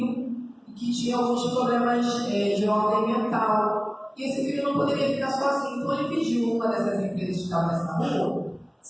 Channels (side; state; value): both; identical; correlation 1.00